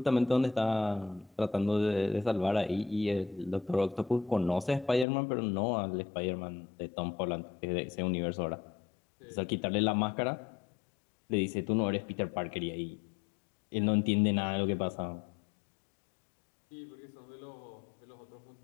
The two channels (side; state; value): right; drops out; at 5.1 s